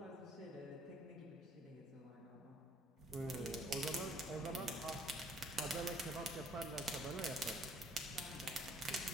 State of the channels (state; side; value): normal; both; correlation 0.61